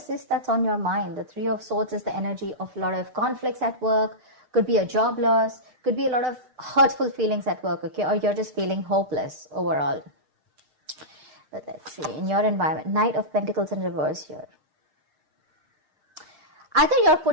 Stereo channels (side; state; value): left; late; 6.6 ms